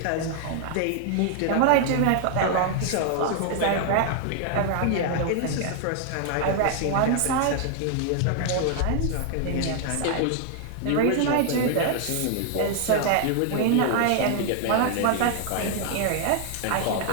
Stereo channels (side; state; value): both; different; correlation 0.00